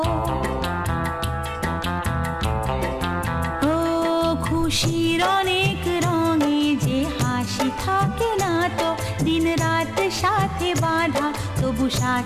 ও খুশির অনেক রঙে যে হাসি থাকে না তো, দিন রাত সাথে বাঁধা তবু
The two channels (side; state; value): both; identical; correlation 1.00